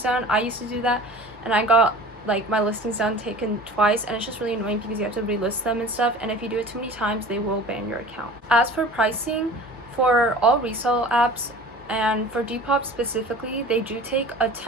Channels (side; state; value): both; normal; correlation 0.41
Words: down. I used to do that, and I got like my listings down taken twice, and it's just really annoying because you have to relist them and stuff, and if you do it too many times they will ban your account. As for pricing, for all resale apps and for Depop specifically, they do take a